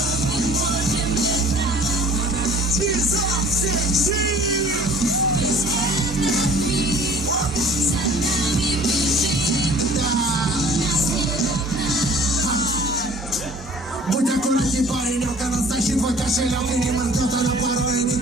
Будь аккуратней, паренек, она стащит твой кошелек и не моргнет, она порой не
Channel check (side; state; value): both; normal; correlation 0.49